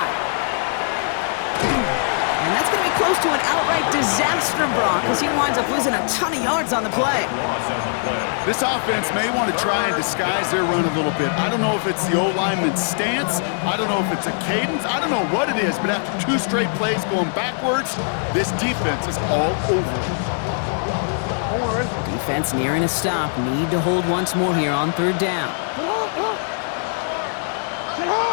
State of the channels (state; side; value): silent; right; digital silence